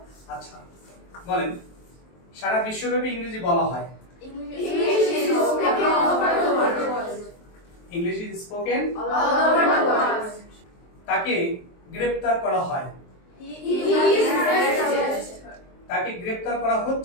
আচ্ছা। বলেন। সারা বিশ্বব্যাপী ইংরেজি বলা হয়। English is spoken all over the world. English is spoken All over the world. তাকে গ্রেফতার করা হয়। He is arrested. তাকে গ্রেফতার করা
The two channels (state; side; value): late; right; 23 ms